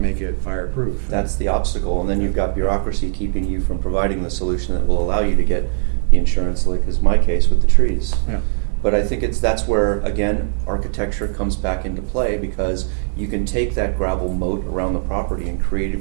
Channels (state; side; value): silent; left; digital silence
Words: make it fireproof. That's the obstacle, and then you've got bureaucracy keeping you from providing the solution that will allow you to get the insurance, like is my case with the trees. Yeah. But I think that's where, again, architecture comes back into play, because you can take that gravel moat around the property and